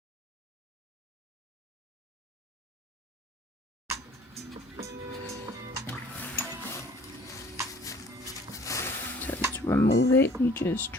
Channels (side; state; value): both; normal; correlation 0.53